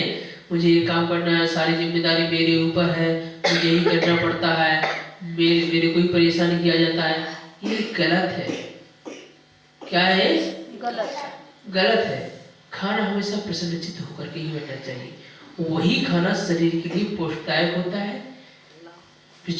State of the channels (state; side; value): identical; both; correlation 1.00